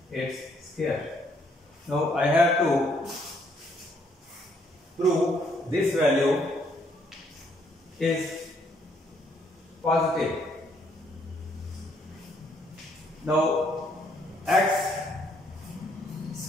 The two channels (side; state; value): both; normal; correlation 0.69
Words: its square. Now I have to prove this value is positive. Now x